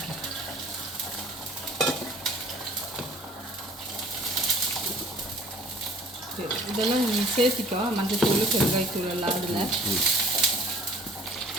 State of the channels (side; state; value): both; normal; correlation 0.50